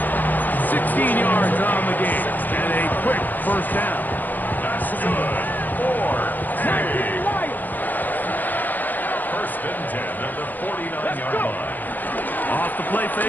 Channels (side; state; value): right; late; 0.085 ms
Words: 16 yards on the game. And a quick first down. That's good. First and 10 at the 49-yard line. Off the play